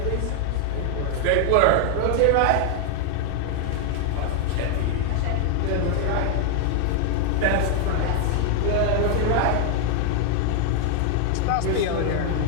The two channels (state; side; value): different; both; correlation 0.00